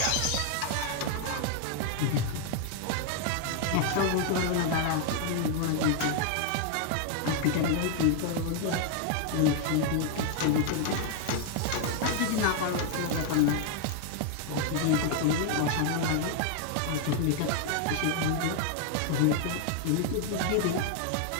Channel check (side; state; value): both; different; correlation 0.00